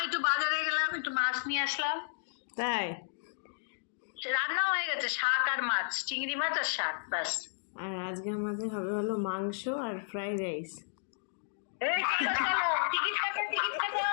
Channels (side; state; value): right; silent; digital silence